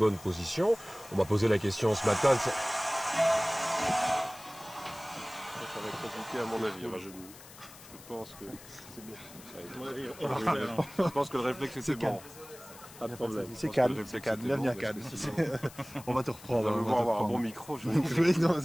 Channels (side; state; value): left; noise; hiss, 19 dB below the sound